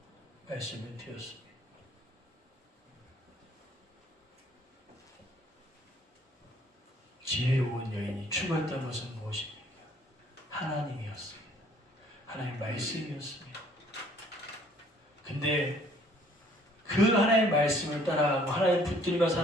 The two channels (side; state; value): both; normal; correlation 0.59